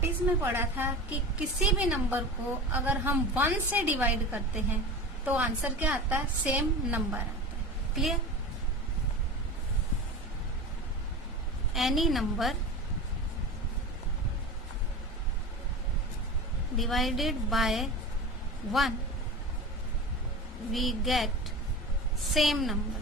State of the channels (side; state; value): both; normal; correlation 0.31